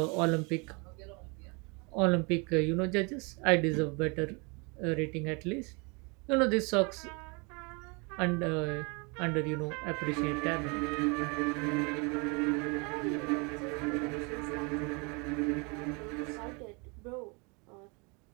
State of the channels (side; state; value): left; quieter; 31.2 dB